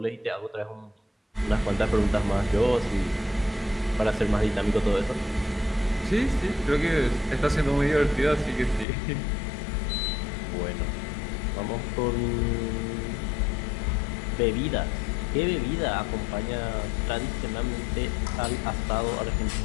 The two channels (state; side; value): drops out; right; at 8.8 s